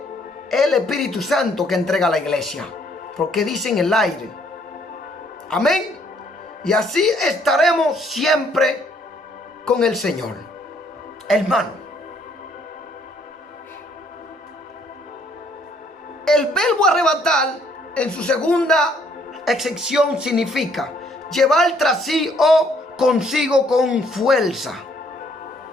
es el Espíritu Santo que entrega a la iglesia, porque dice en el aire. Amén. Y así estaremos siempre con el Señor. Hermano, el verbo arrebatar en su segunda excepción significa llevar tras sí o consigo con fuerza.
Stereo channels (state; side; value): normal; both; correlation 0.65